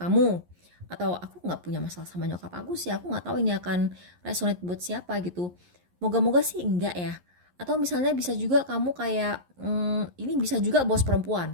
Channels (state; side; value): late; left; 11 ms